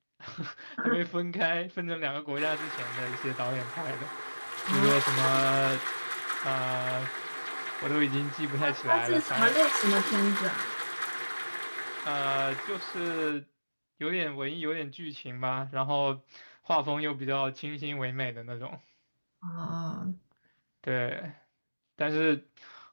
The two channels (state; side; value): inverted; both; correlation -1.00